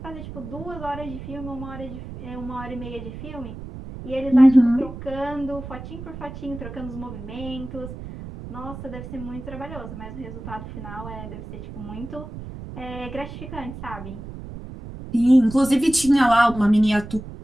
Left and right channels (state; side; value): noise; right; rumble, 11 dB below the sound